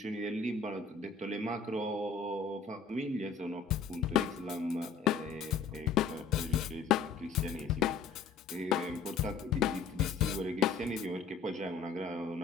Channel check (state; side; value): quieter; right; 5.5 dB